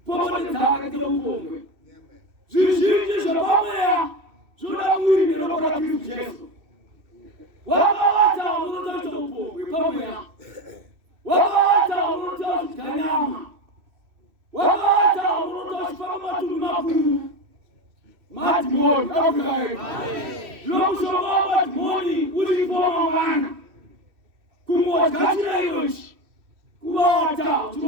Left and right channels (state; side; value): late; left; 2.6 ms